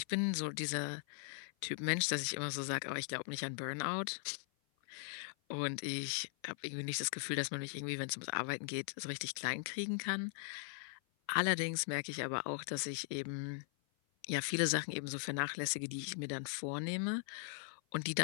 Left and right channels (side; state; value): right; silent; 51 dB below the other